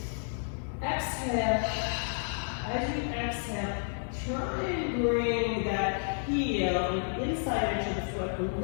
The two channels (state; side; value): silent; right; digital silence